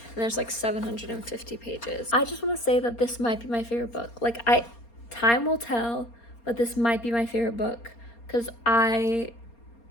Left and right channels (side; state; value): right; late; 4.3 ms